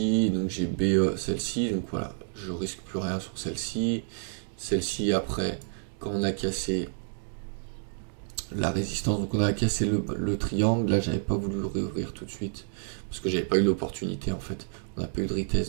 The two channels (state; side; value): silent; left; digital silence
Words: donc j'ai BE celle-ci, donc voilà, je risque plus rien sur celle-ci. Celle-ci après, quand on a cassé, la résistance. Donc on a cassé le triangle. Là, j'avais pas voulu le réouvrir tout de suite parce que j'avais pas eu l'opportunité en fait. On n'a pas eu de